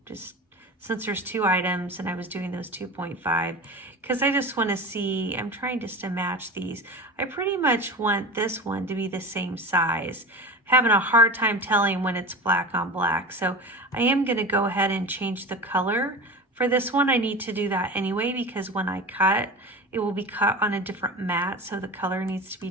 just since there's 2 items and I was doing those 2.5, because I just wanna see, I'm trying just to match these. I pretty much want this one to be the same size. Having a hard time telling when it's black on black. So I am gonna go ahead and change the color. For this one, I need to do that anyway, because when I cut, it will be cut on a different mat, so the color needs to be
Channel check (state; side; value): normal; both; correlation 0.30